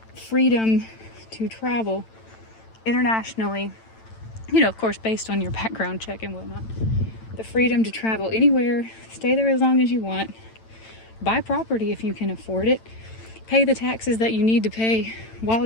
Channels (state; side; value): late; right; 9.0 ms